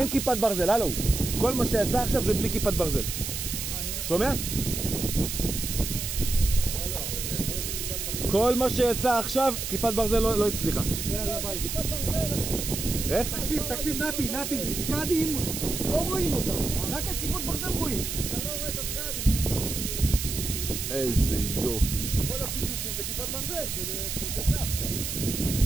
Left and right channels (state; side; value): noise; right; hiss, 4 dB below the sound